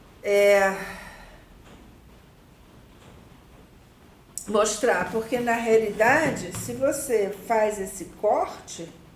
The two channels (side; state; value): both; identical; correlation 1.00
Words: mostrar, porque na realidade, se você faz esse corte,